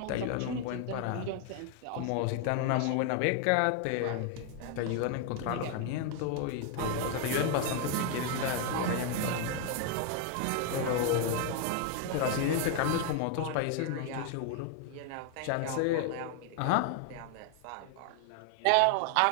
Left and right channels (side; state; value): both; different; correlation 0.00